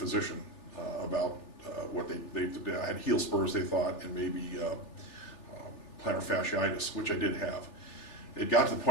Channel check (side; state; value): right; late; 3.4 ms